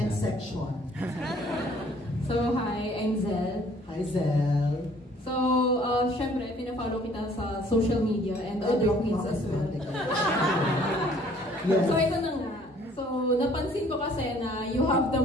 ka. section. So, hi, I'm Zel. Hi, Zel. So, syempre, pinafollow kita sa social media and other queens as well. Yes. So, ito na nga. So, napansin ko kasi na you have the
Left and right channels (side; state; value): both; normal; correlation 0.58